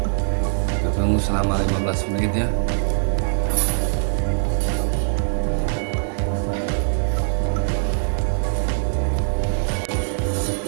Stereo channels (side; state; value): left; silent; 64 dB below the other